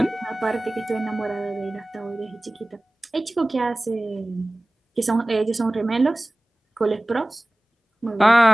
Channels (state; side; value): normal; both; correlation 0.98